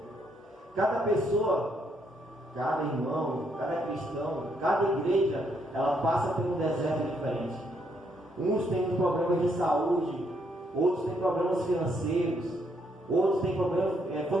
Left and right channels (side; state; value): both; normal; correlation 0.73